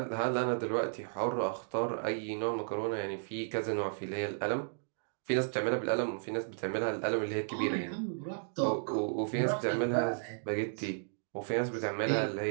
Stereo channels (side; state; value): left; silent; digital silence